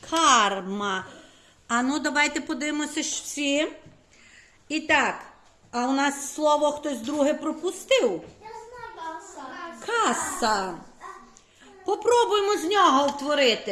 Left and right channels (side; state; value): both; identical; correlation 1.00